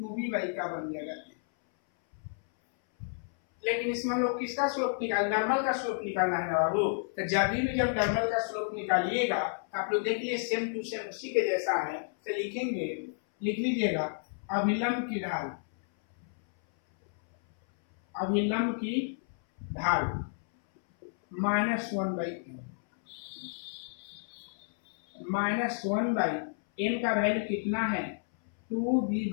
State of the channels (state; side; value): silent; right; 57 dB below the other